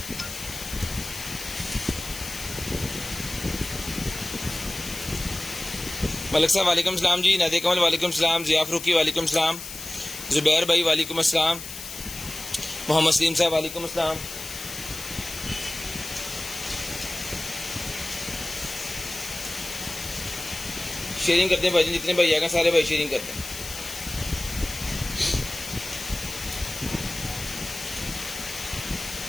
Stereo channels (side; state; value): left; noise; hiss, 10 dB below the sound